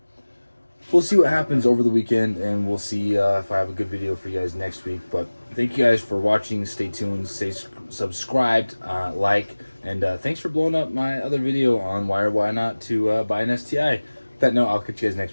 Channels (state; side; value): inverted; both; correlation -1.00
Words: we'll see what happens over the weekend, and we'll see if I have a good video for you guys next week. But thank you guys for watching. Stay tuned, stay subscribed, like, and thanks for blowing up my other video on why or why not to buy an STI. With that note, I'll catch you guys